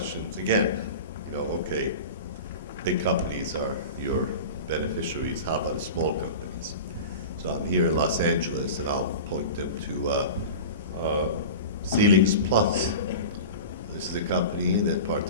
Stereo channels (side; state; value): both; inverted; correlation -0.32